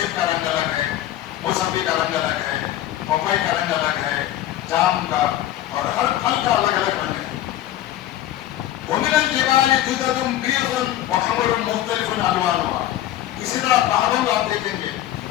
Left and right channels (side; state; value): right; quieter; 13.0 dB